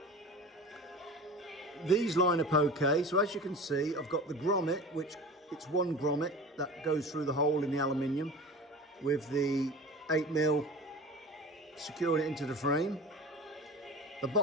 These line up okay, so as you can see I've got the grommet, which it's one grommet that goes through the hole in the aluminium with the 8mm securing it into the frame. The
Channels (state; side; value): normal; both; correlation 0.35